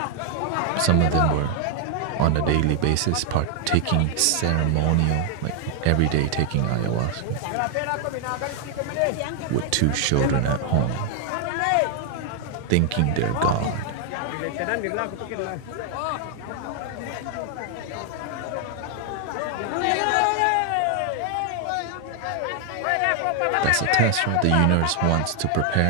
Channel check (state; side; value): different; both; correlation 0.00